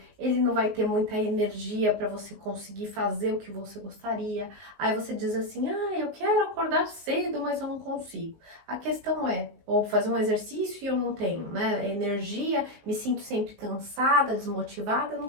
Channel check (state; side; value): late; left; 19 ms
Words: ele não vai ter muita energia para você conseguir fazer o que você gostaria. Aí você diz assim, eu quero acordar cedo, mas eu não consigo. A questão é, ou fazer um exercício e eu não tenho, né, energia, me sinto sempre cansada, desmotivada, eu